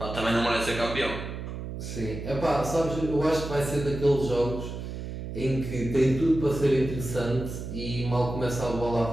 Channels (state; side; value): noise; right; hum, 7 dB below the sound